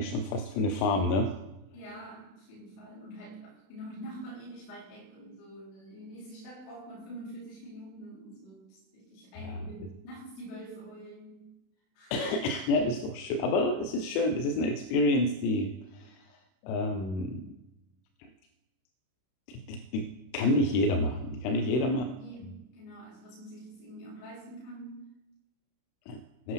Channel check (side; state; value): right; late; 31 ms